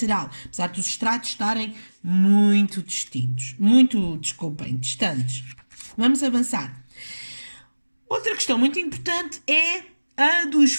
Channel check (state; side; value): inverted; both; correlation -1.00